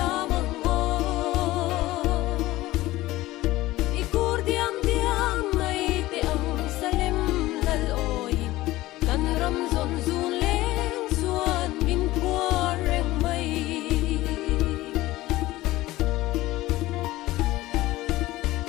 o ikur diam diam mai te ang salem lal oi kan ram zon zun leng suan min puar reng mai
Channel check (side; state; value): right; quieter; 17.4 dB